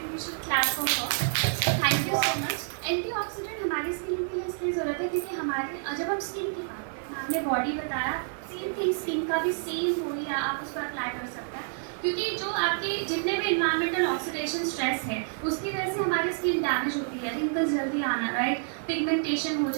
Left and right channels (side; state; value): left; silent; digital silence